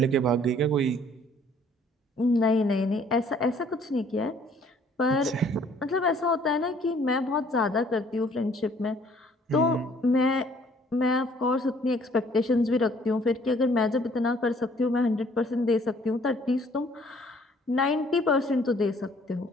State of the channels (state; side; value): normal; both; correlation 0.59